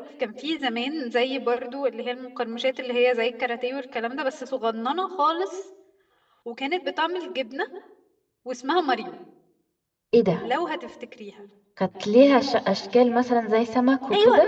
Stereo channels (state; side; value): identical; both; correlation 1.00